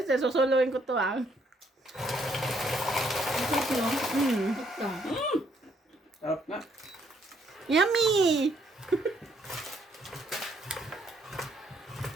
eh, susuluhin ko to, ah. Ito lang. Mm. Ito. Sarap nga. Yummy!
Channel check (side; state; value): both; normal; correlation 0.70